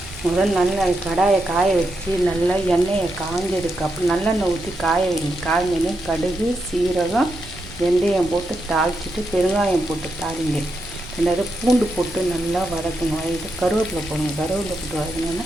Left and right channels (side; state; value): right; noise; rumble, 18 dB below the sound